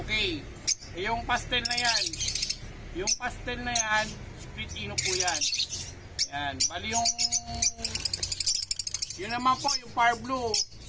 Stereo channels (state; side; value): identical; both; correlation 1.00